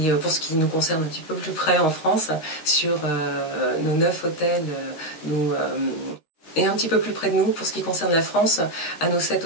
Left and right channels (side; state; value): right; late; 13 ms